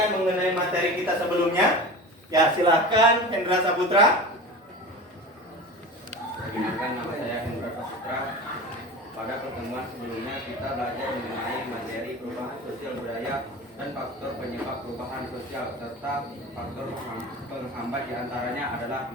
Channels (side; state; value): both; normal; correlation 0.32